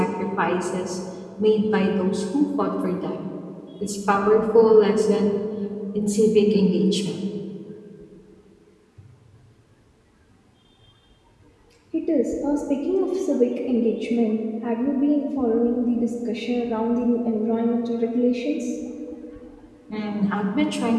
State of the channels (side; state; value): both; identical; correlation 1.00